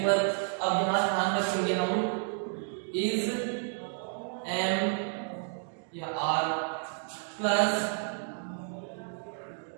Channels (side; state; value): left; silent; digital silence